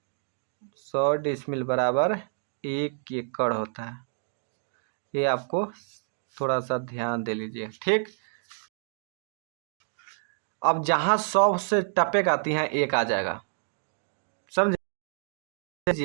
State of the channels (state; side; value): silent; left; digital silence